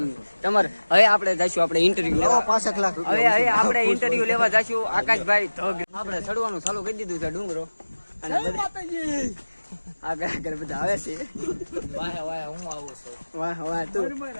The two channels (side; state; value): both; inverted; correlation -1.00